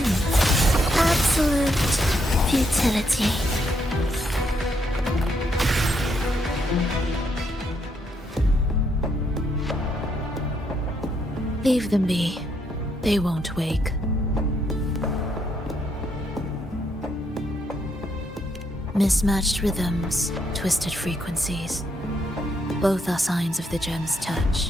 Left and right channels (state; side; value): normal; both; correlation 0.76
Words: Absolute futility. Leave them be. They won't wake. Mismatched rhythms, twisted frequencies. Both are signs of the gem's touch.